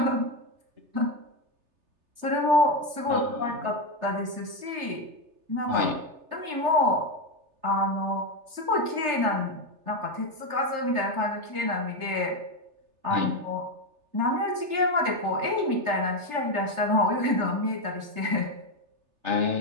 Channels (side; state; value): left; late; 3.3 ms